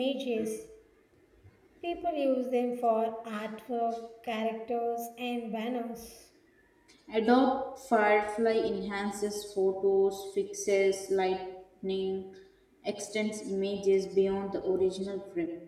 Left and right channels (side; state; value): both; identical; correlation 1.00